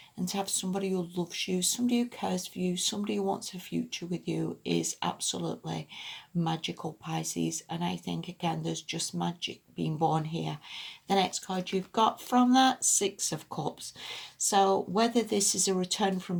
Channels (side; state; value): both; identical; correlation 1.00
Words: and to have somebody who loves you, somebody who cares for you, somebody who wants a future with you is absolutely magical, Pisces. And I think, again, there's just magic being born here. The next card you've got from that, Six of Cups. So whether this is a return from